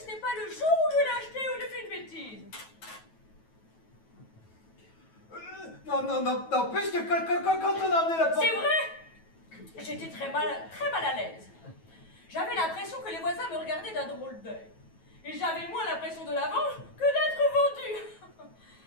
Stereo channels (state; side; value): late; right; 9.2 ms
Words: ce n'est pas le jour où je l'ai acheté ou j'ai fait une bêtise. Non, puisque quand on a amené la pancarte... C'est vrai. J'étais très mal à l'aise. J'avais l'impression que les voisins me regardaient d'un drôle d'œil. Et j'avais moins l'impression de la vendre que d'être vendue.